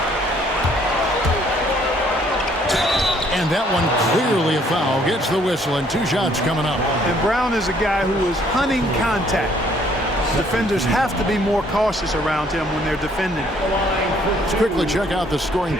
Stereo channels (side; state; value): both; normal; correlation 0.63